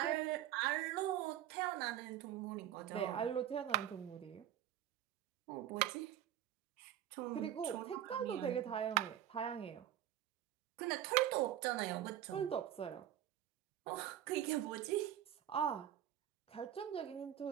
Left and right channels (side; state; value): left; quieter; 11.5 dB